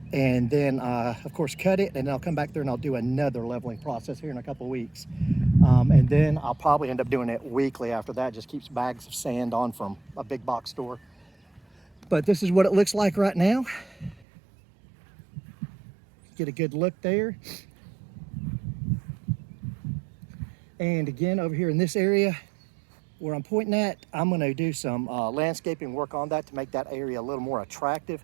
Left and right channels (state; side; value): drops out; left; at 14.2 s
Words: and then of course cut it, and then I'll come back there and I'll do another leveling process here in a couple of weeks. And then I'll probably end up doing it weekly after that. Just keeps bags of sand on from a big box store. But this is what it looks like right now. Get a good look there. And again, over here in this area where I'm pointing at, I'm gonna do some landscaping work on that to make that area a little more attractive.